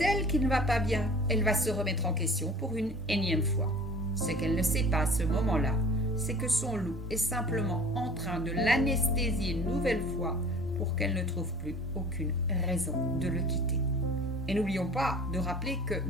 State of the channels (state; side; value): normal; both; correlation 0.45